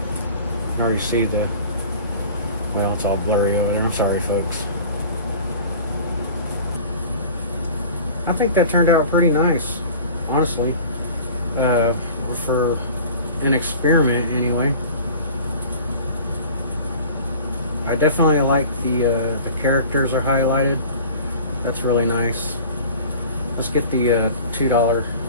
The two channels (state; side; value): inverted; both; correlation -0.42